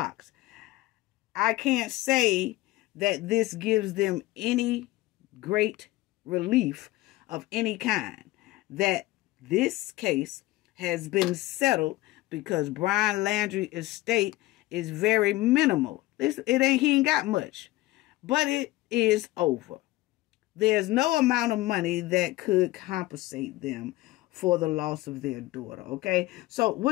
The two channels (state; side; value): quieter; right; 18.3 dB